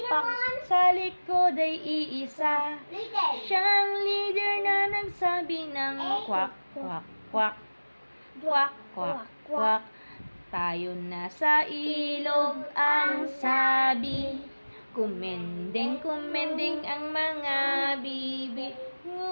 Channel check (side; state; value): both; inverted; correlation -1.00